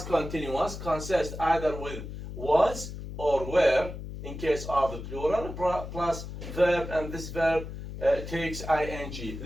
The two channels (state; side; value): noise; left; hum, 9 dB below the sound